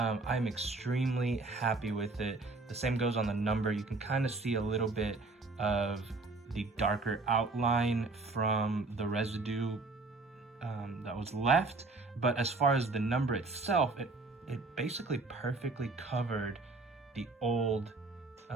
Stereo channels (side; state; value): left; quieter; 3.5 dB